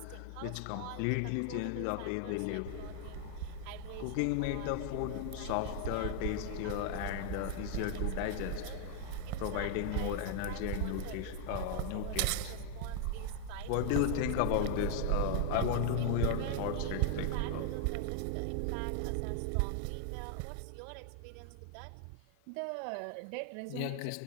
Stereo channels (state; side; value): different; both; correlation 0.00